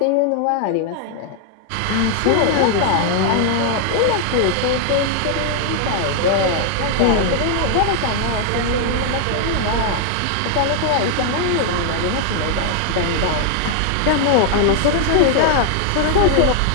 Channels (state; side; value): different; both; correlation 0.00